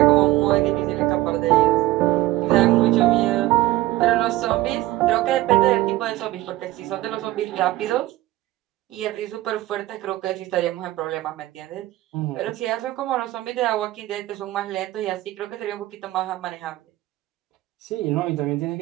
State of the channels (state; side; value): quieter; left; 16.7 dB